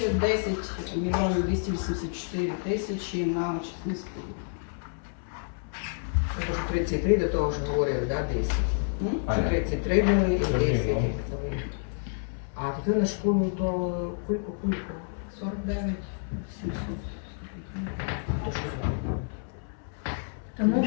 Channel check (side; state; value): right; silent; 57 dB below the other